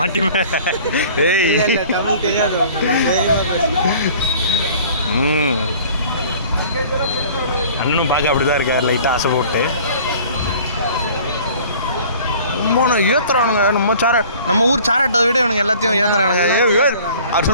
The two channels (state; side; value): inverted; both; correlation -0.48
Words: ஏய் தமிழ் தெரியாது. அண்ணனும் பார்க்க அப்படிதான் இருக்கார், லைட்டாக ஆசை போட்டு. ஏற்றுறானுங்க நம்ம ஊர் சாராட்டை விட இவனுங்க எல்லாத்தையும் ஏற்றுறானுங்க. அவர்